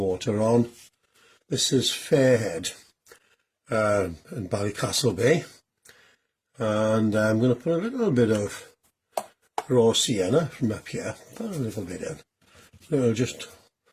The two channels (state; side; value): identical; both; correlation 1.00